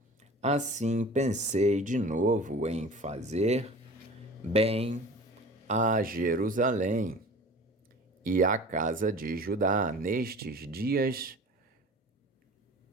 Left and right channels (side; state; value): both; normal; correlation 0.41